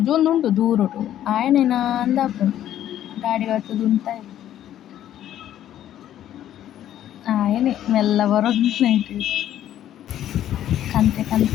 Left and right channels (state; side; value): quieter; right; 11.6 dB